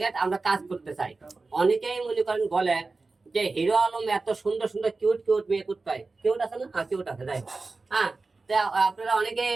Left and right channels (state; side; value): quieter; left; 3.8 dB